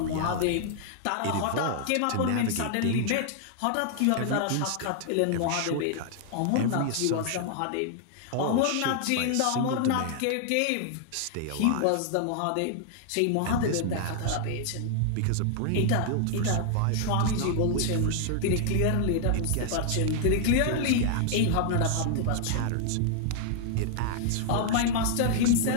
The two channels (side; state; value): both; different; correlation 0.00